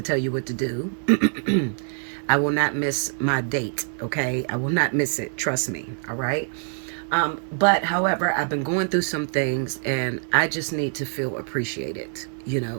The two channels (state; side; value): silent; left; digital silence